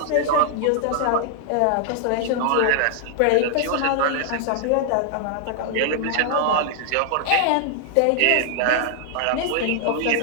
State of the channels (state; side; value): different; both; correlation 0.00